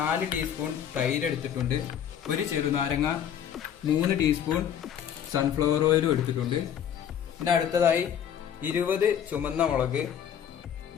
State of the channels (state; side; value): quieter; right; 9.2 dB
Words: ടീസ്പൂൺ തൈര് എടുത്തിട്ടുണ്ട്, 1 ചെറുനാരങ്ങ, 3 ടീസ്പൂൺ സൺഫ്ലവർ ഓയിലും എടുത്തിട്ടുണ്ട്. പിന്നെ അടുത്തതായി 20 ചുമന്ന മുളക്,